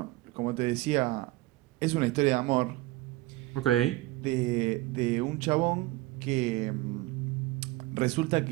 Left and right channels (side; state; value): left; quieter; 18.9 dB